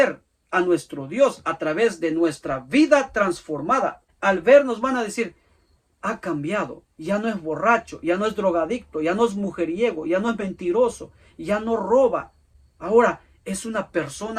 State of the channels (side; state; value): both; identical; correlation 1.00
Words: a nuestro Dios a través de nuestra vida transformada. Al vernos van a decir, ha cambiado, ya no es borracho, ya no es drogadicto, ya no es mujeriego, ya no es mentiroso, ya no roba. Ahora es una